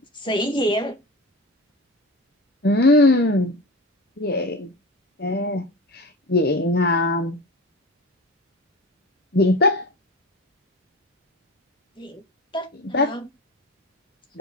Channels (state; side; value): normal; both; correlation 0.31